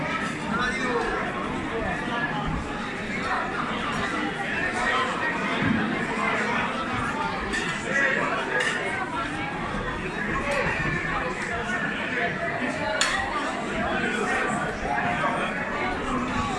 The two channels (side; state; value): both; identical; correlation 1.00